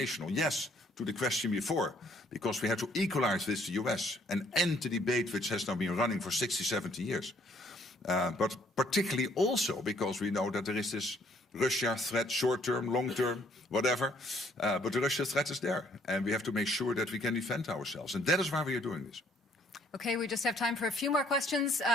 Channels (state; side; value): normal; both; correlation 0.63